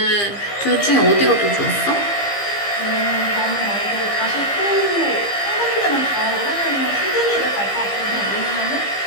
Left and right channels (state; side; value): late; right; 15 ms